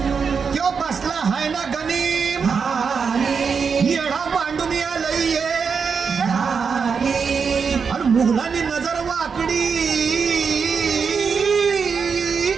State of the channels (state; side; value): quieter; left; 5.8 dB